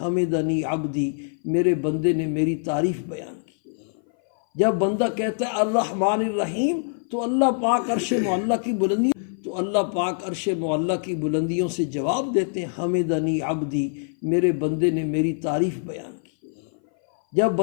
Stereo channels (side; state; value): right; silent; 58 dB below the other